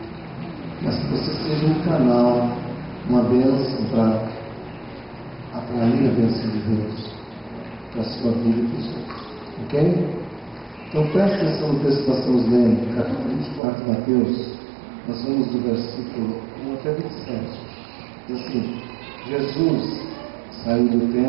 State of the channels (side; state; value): left; drops out; at 13.6 s